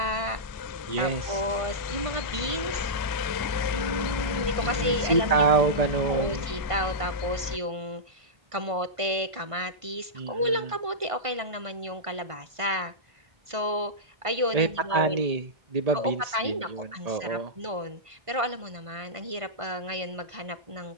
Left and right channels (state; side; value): late; left; 1.5 ms